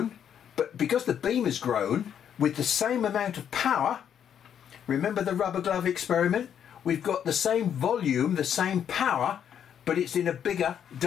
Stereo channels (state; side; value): quieter; right; 8.9 dB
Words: but because the beam has grown with the same amount of power, remember the rubber glove experiment? We've got the same volume, the same power, but it's in a bigger